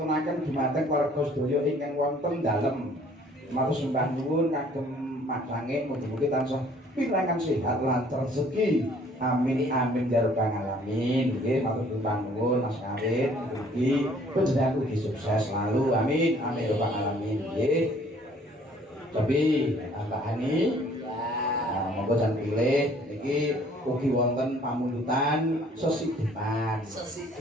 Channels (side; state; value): both; normal; correlation 0.57